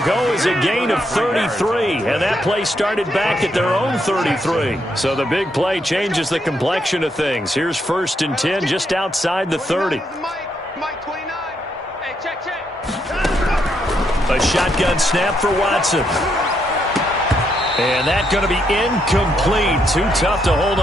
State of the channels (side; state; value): both; normal; correlation 0.77